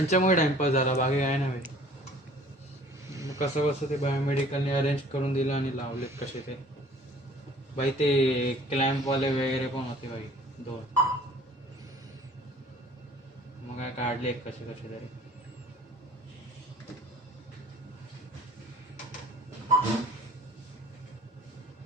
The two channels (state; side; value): normal; both; correlation 0.51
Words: टाइमपास झाला, बाकी काय नाही. मग कसं कसं ते बायोमेडिकलने अरेंज करून दिलं आणि लावलेत कसे ते बाई. ते क्लॅम्पवाले वगैरे पण होते बाई 2. मग काय काढले कसे कसे तरी.